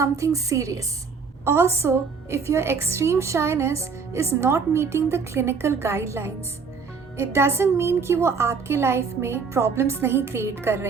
serious? Also, if your extreme shyness is not meeting the clinical guidelines, it doesn't mean कि वो आपके life में problems नहीं create कर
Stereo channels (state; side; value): quieter; left; 5.3 dB